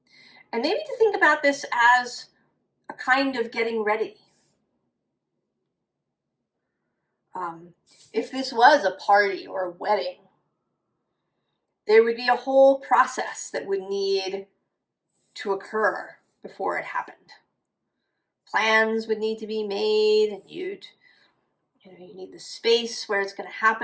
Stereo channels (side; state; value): both; identical; correlation 1.00